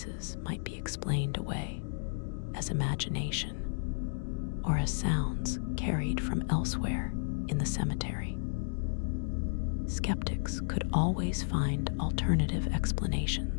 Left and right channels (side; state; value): right; silent; digital silence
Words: might be explained away as imagination or as sounds carried from elsewhere in the cemetery. Skeptics could always find alternative